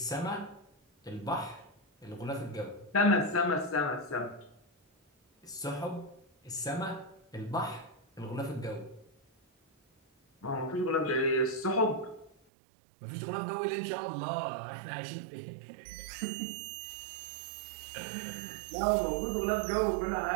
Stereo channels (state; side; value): drops out; left; at 12.3 s